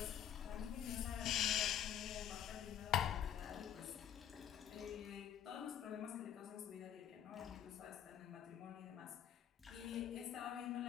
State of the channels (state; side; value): quieter; right; 10.1 dB